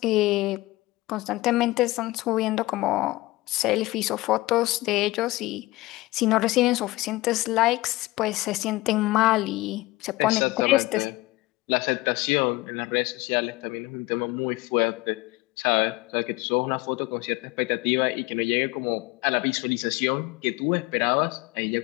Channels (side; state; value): right; quieter; 19.6 dB